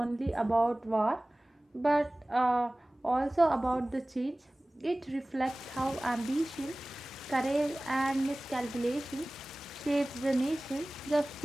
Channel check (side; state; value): both; normal; correlation 0.98